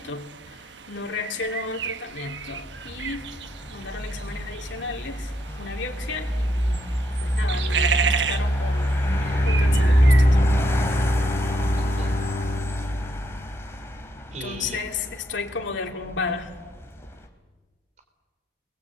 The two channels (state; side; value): normal; both; correlation 0.76